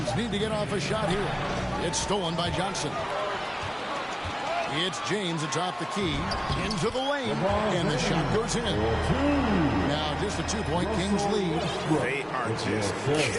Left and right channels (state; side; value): identical; both; correlation 1.00